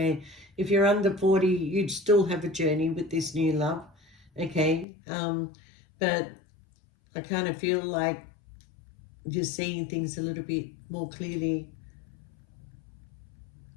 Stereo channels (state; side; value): drops out; right; at 4.9 s